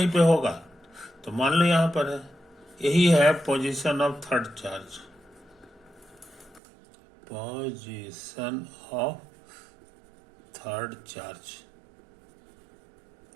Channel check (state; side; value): drops out; left; at 6.6 s